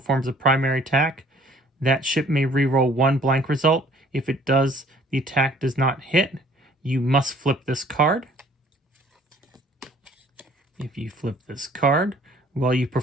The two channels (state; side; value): normal; both; correlation 0.56